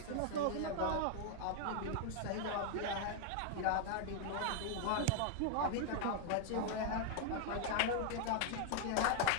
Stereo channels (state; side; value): different; both; correlation 0.00